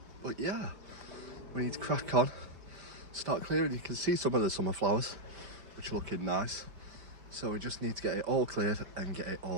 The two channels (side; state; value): left; late; 5.1 ms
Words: But yeah, we need to crack on, start clearing. You can see some of the summer flowers, which are looking nice. So we just need to get it all cleared and get it